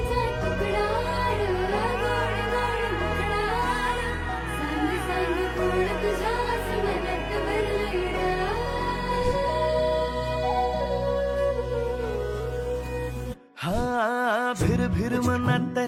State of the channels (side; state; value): both; identical; correlation 1.00